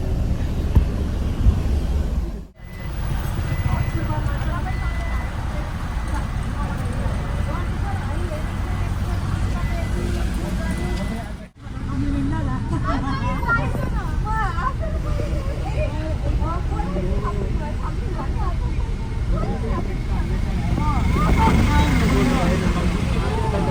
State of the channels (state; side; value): identical; both; correlation 1.00